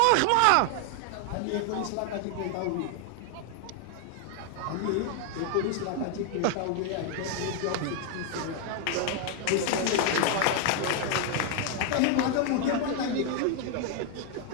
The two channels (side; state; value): both; different; correlation 0.00